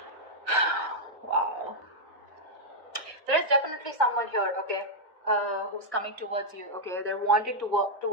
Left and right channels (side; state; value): both; normal; correlation -0.04